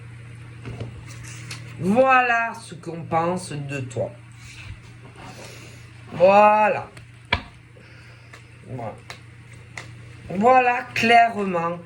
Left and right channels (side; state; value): both; identical; correlation 1.00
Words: Voilà ce qu'on pense de toi. Voilà. Voilà. Voilà clairement